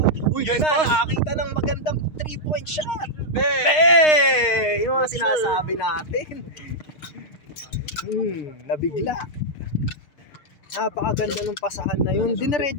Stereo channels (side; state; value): right; late; 6.5 ms